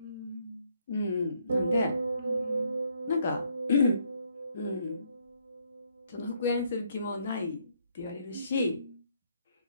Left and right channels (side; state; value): both; inverted; correlation -0.71